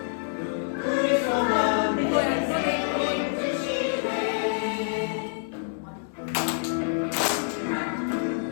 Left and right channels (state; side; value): silent; right; digital silence